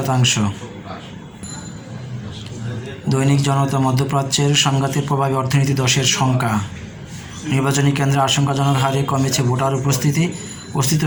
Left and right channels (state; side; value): identical; both; correlation 1.00